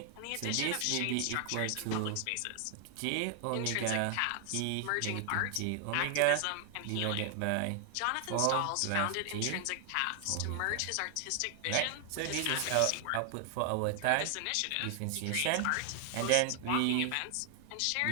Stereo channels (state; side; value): different; both; correlation 0.00